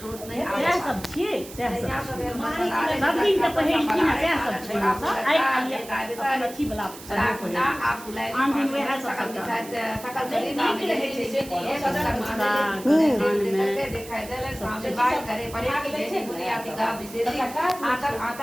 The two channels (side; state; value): right; noise; hiss, 16 dB below the sound